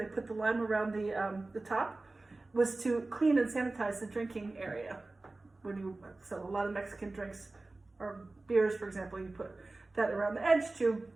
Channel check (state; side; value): quieter; left; 3.2 dB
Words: put the lime around the top, was to clean and sanitize the drinking area. So a lot of Mexican drinks or beers, for example, you put that around the edge to